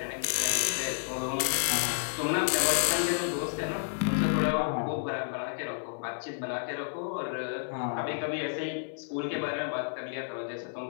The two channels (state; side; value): silent; right; 57 dB below the other